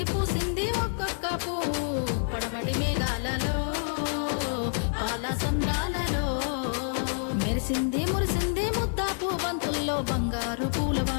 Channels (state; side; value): silent; right; 59 dB below the other